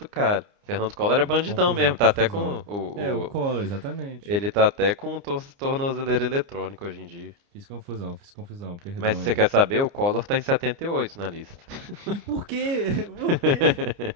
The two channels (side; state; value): left; late; 29 ms